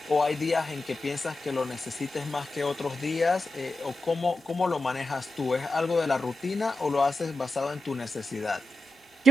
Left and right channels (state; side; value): normal; both; correlation 0.91